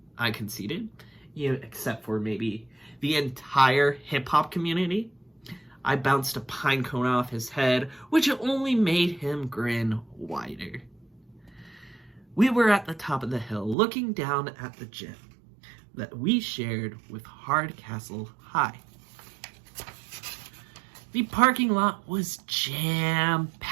I conceded. Except for maybe the entire hip-hop community. I bounced a pine cone off his head, which only made him grin wider. We were at the top of the hill, looking down at the gym that we shared with Hardcastle High. The parking lot was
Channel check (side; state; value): left; drops out; at 13.8 s